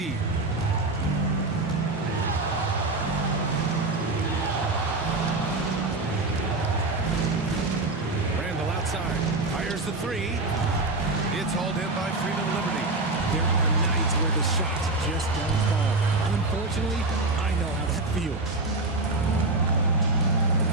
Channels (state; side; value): quieter; left; 3.1 dB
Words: Outside. Fires the 3. It's hauled in by Freeman Liberty. There are nights where the shots just don't fall. Unfortunately, I know how that feels.